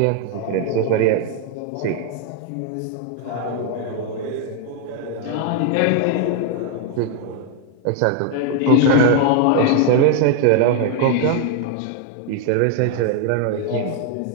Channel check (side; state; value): both; different; correlation 0.00